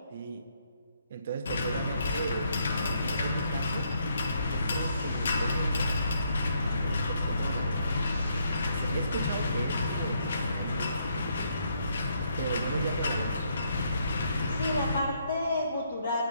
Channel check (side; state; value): both; inverted; correlation -0.73